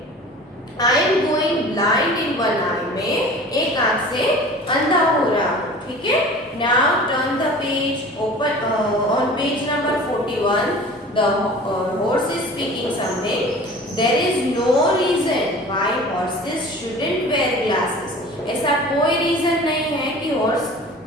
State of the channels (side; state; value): both; normal; correlation 0.41